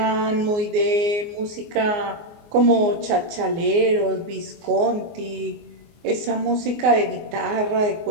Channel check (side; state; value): left; late; 24 ms